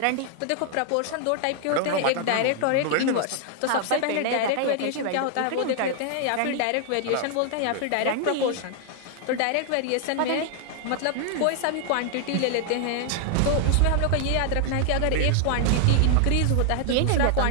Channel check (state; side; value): different; both; correlation 0.00